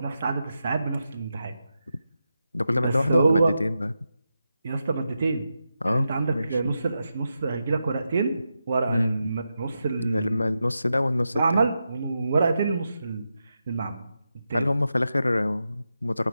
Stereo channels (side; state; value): both; inverted; correlation -0.88